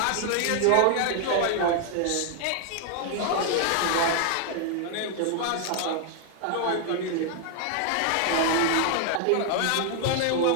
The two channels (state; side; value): different; both; correlation 0.00